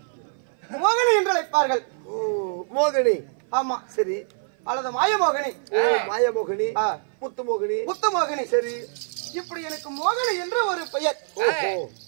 மோகினி என்று அழைப்பார்கள். மோகினி. ஆமா. சரி. அல்லது மாயமோகினி. மாயமோகினி, முத்துமோகினி. முத்துமோகினி. சரி. இப்படி எனக்கு மோகினி என்று ஒரு பெயர்.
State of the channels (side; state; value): left; silent; 58 dB below the other